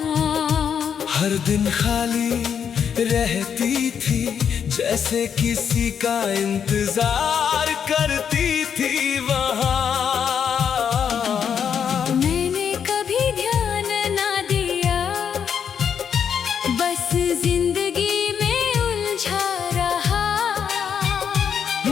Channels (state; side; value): quieter; right; 7.7 dB